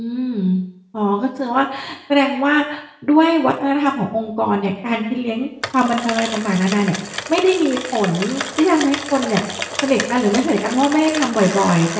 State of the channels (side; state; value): both; identical; correlation 1.00